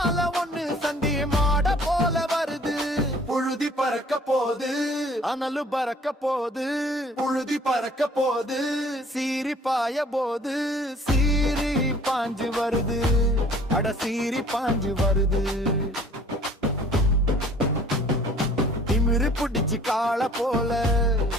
ஒண்ணு சண்டி மாட போல வருது. புழுதி பறக்க போது, அனலு பறக்க போது, புழுதி பறக்க போது, சீறி பாய போது, சீறி பாஞ்சு வருது, அட சீறி பாஞ்சு வருது. திமிரு பிடிச்சு கால போல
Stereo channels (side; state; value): both; normal; correlation 0.53